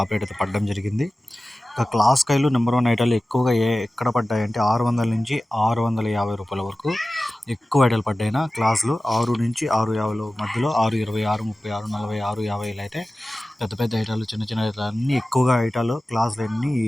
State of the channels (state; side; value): normal; both; correlation 0.96